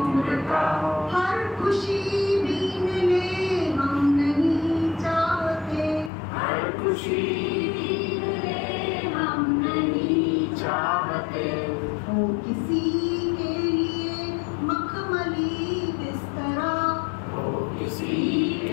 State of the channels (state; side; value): drops out; right; at 6.1 s